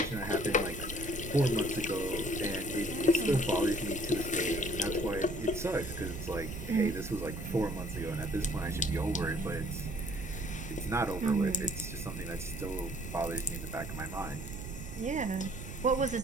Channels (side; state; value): right; noise; rumble, 9 dB below the sound